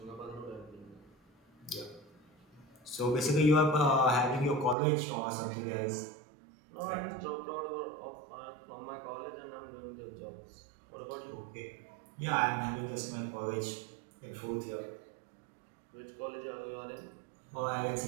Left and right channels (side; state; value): left; drops out; at 4.8 s